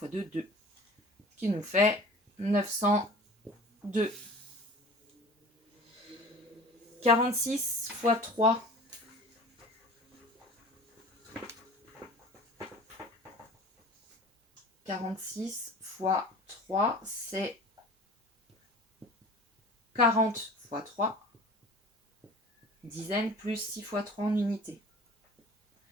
2, 2. Ce qui nous fait 902. 46 fois 3. 46 fois 3, c'est 40 fois 3. Dizaines plus 6 fois 3 en unité.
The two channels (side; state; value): both; normal; correlation 0.42